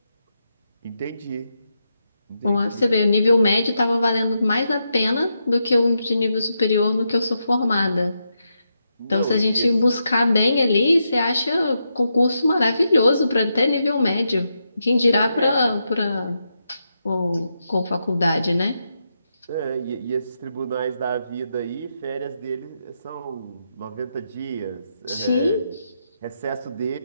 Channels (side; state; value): both; inverted; correlation -0.84